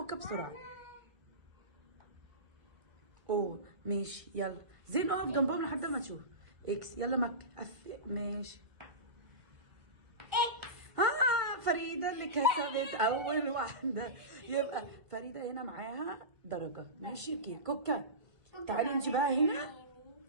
بسرعه. اوه ماشي يلا زين اقف جنبهم لحد ما تشوف اكس. يلا مكه ماشي اكس. فريده اللي كسبت اول واحده. يبقى فريده هنا معاها درجه. ماشي اوكي كوكا تعالي انت بقى هنا.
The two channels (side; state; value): left; late; 1.5 ms